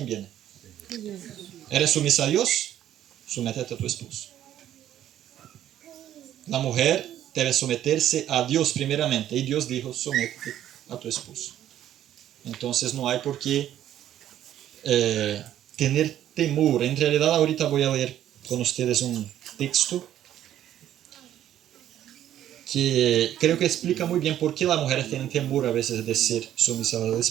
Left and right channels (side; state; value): left; quieter; 11.6 dB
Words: viene? ¿Eres sumisa a Dios? Sométete a tu esposo. La mujer debe someterse a Dios primeramente, y Dios dijo, sométete a tu esposo. Entonces no hay por qué tener temor. En realidad ahorita voy a leer con ustedes un texto que creo que explica muy bien por qué las mujeres tienen temor a veces de ser sumisas al